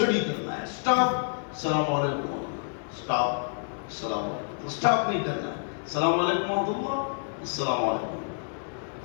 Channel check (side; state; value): right; silent; 59 dB below the other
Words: کرنا ہے. سٹاپ السلام علیکم, سٹاپ السلام علیکم, تو سٹاپ نہیں کرنا ہے. السلام علیکم ورحمۃ اللہ, السلام علیکم,